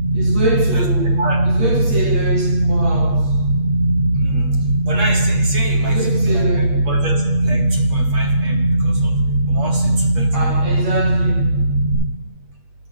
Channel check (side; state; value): left; late; 8.5 ms